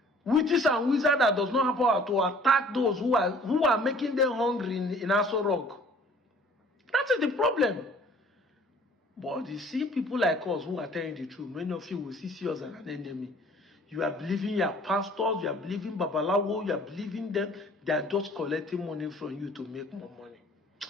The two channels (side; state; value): both; normal; correlation 0.52